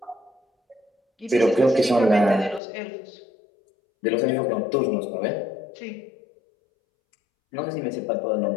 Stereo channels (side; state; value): right; drops out; at 2.6 s